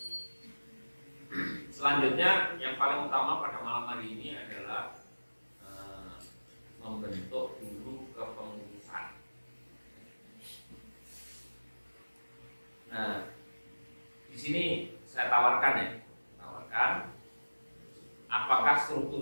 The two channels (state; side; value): inverted; both; correlation -1.00